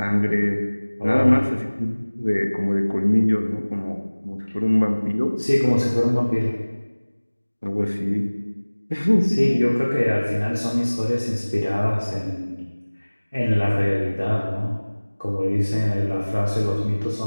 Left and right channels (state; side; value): inverted; both; correlation -1.00